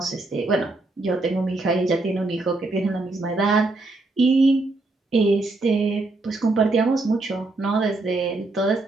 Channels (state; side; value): quieter; left; 3.1 dB